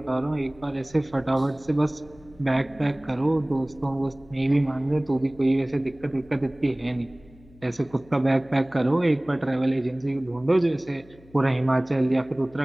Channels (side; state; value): left; noise; hum, 25 dB below the sound